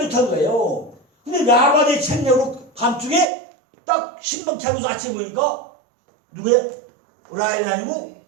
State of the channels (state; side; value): drops out; left; at 3.2 s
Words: 좋다는 거예요. 근데 라반의 책략으로 밤중에 딱 신방 차려서 아침에 보니까 누구예요? 라헬이 아니고